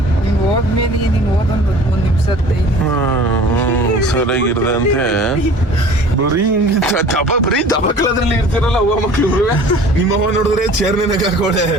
ನೀನ್ ಹೋದ್ಮೇಲೆ ನೀನ್ ಓದೊಂದು 1 ನಿಮಿಷ ಸರಿಯಾಗಿರ್ದೆ ಅಂತೆ. ಬರೀ ದಬಕಲದ್ರಲ್ಲಿ ಇರ್ತಿರಲ್ಲ ಅವ್ವ ಮಕ್ಳು. ನಿಮ್ಮವ್ವ ನೋಡಿದ್ರೆ ಚೇರ್ನಾಗ ಹಾಕೋಳೆ,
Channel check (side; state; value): both; normal; correlation 0.46